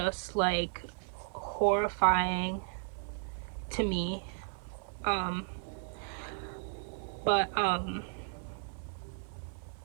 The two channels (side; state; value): left; silent; digital silence